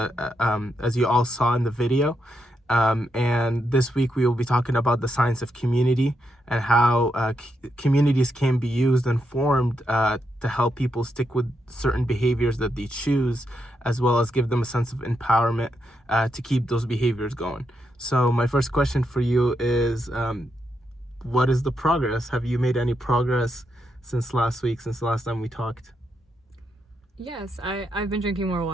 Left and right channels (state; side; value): normal; both; correlation 0.82